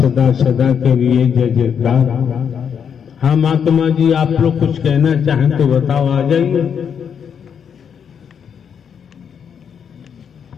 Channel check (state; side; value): quieter; right; 7.5 dB